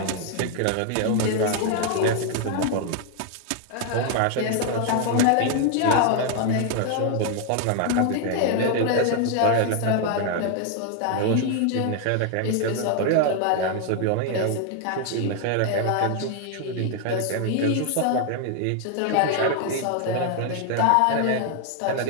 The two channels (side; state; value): both; different; correlation 0.00